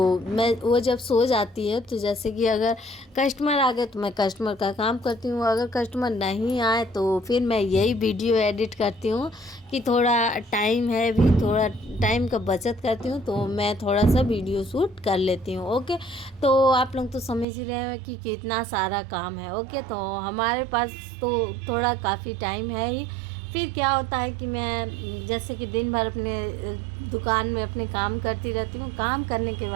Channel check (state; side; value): drops out; left; at 17.4 s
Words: वो जब सो जाती है तो जैसे कि अगर कस्टमर आ गए तो मैं कस्टमर का काम करती हूँ। अगर कस्टमर नहीं आए तो फिर मैं यही वीडियो एडिट करती हूँ कि थोड़ा टाइम है, भी थोड़ा टाइम का बचत करती हूँ, तो मैं थोड़ा सा वीडियो शूट कर लेती हूँ। ओके, तो आप लोग तो समझ ही रहे हैं कि कितना सारा काम है। ओके, तो हमारे पास तो थोड़ा काफ़ी टाइम है ही। फिर क्या होता है कि मैं जैसे कि दिन भर अपने दुकान में अपने काम करती रहती हूँ। काम करने के